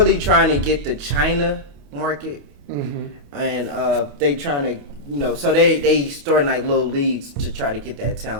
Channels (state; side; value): late; left; 28 ms